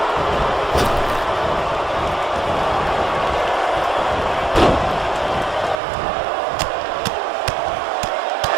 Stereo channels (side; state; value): left; drops out; at 5.8 s